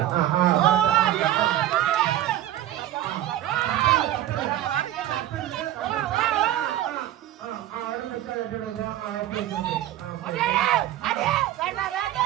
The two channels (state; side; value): quieter; left; 13.2 dB